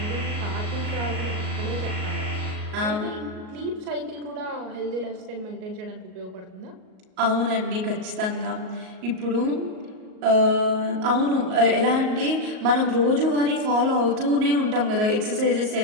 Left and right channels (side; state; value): left; late; 38 ms